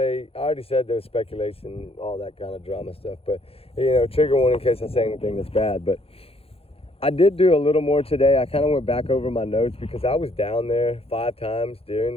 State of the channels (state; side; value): late; right; 0.28 ms